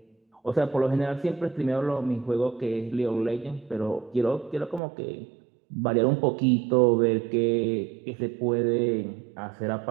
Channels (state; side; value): drops out; left; at 4.8 s